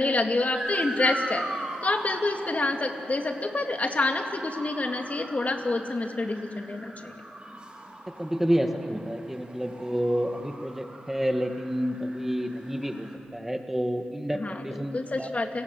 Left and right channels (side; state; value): both; normal; correlation 0.87